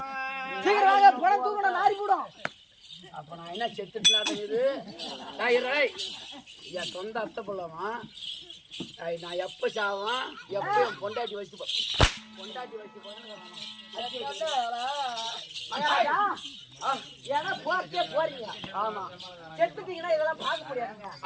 அப்ப நான் என்ன செத்துட்டு என் சொந்த அத்தை போலாமா நான் எப்ப சாவான் எப்ப என் பொண்டாட்டி வச்சு போறீங்க ஆமா செத்துட்டீங்கன்னா இதெல்லாம் பார்க்க முடியாதுங்க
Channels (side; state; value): both; identical; correlation 1.00